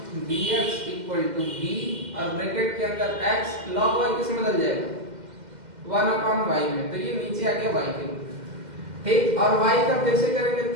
dx equal to v और ब्रैकेट के अंदर x log y किसमें बदल जाएगा, 1 अपॉन y में, तो ये नीचे आ गया y के। ठीक, और y का फिर से करेंगे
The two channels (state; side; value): late; left; 2.1 ms